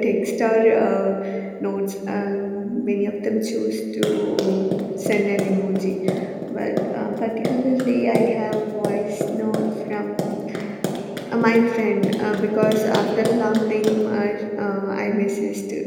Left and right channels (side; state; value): both; identical; correlation 1.00